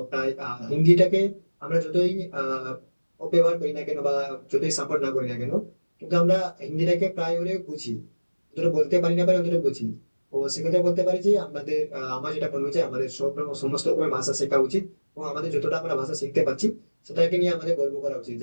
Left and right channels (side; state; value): both; inverted; correlation -1.00